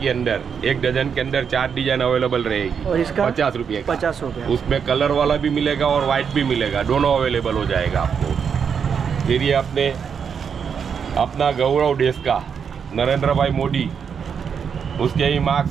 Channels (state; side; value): quieter; left; 6.9 dB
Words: ही अंदर, एक डजन के अंदर 4 डिजाइन अवेलेबल रहेगी। और इसका 50 रुपये का। 50 रुपया। उसमें कलर वाला भी मिलेगा और वाइट भी मिलेगा, दोनों अवेलेबल हो जाएगा आपको। फिर ये अपना गौरव देश का नरेंद्र भाई मोदी, उसके ही मार्क